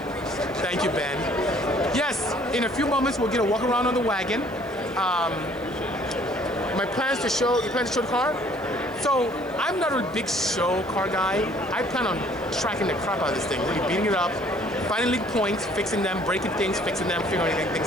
Thank you, Ben. Yes, in a few moments, we'll get a walk around on the wagon. My plans to show, you plan to show the car? So I'm not a big show car guy. I plan on tracking the crap out of this thing, really beating it up, finding leak points, fixing them, breaking things, fixing them, figuring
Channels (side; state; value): right; noise; hiss, 28 dB below the sound